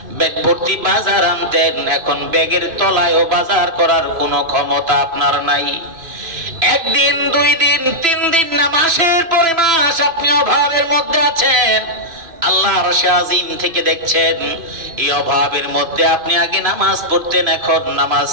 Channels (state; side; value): late; left; 3.0 ms